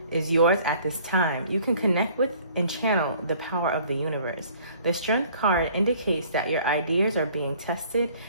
is yours at this time. You can connect with and channel the power of the universe. The strength card indicates that your ideas are being tested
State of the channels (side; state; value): both; inverted; correlation -0.55